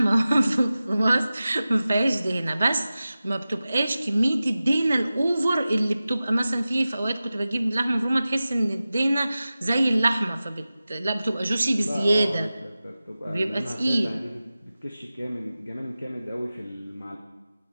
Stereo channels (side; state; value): both; inverted; correlation -0.95